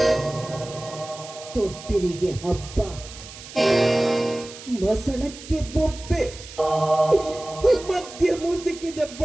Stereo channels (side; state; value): right; noise; hiss, 15 dB below the sound